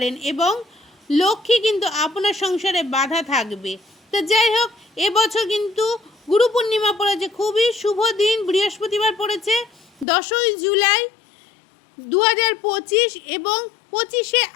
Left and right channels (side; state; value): right; drops out; at 10.1 s